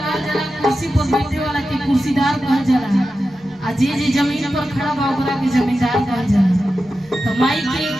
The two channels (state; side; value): normal; both; correlation 0.92